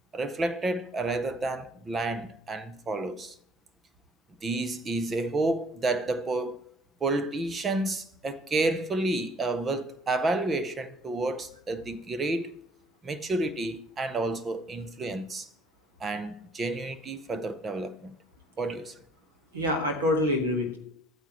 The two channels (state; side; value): normal; both; correlation 0.60